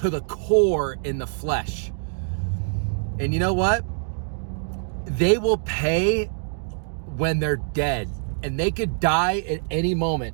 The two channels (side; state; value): left; silent; digital silence